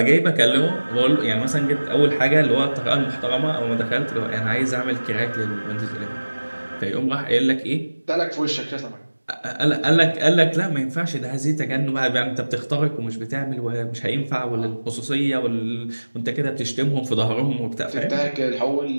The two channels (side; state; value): both; inverted; correlation -1.00